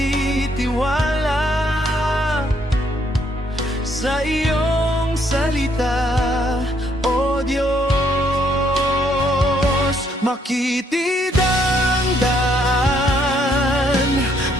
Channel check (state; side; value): normal; both; correlation 0.70